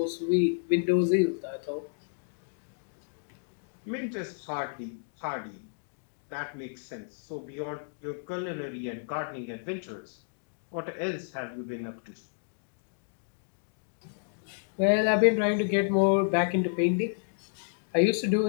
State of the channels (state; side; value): silent; right; digital silence